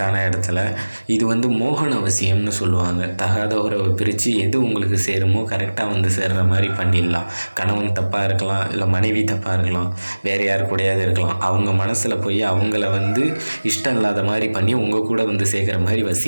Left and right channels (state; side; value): inverted; both; correlation -1.00